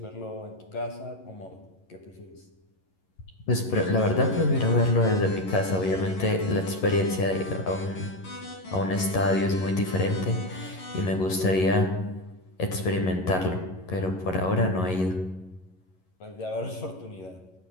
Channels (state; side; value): late; right; 11 ms